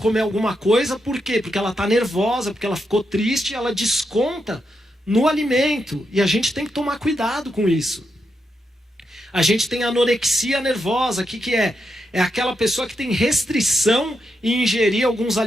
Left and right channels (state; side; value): normal; both; correlation 0.84